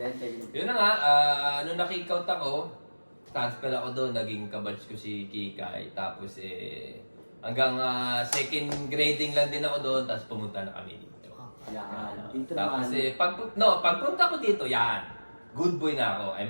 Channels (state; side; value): inverted; both; correlation -1.00